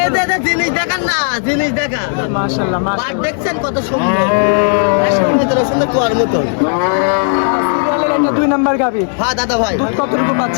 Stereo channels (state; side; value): silent; right; 61 dB below the other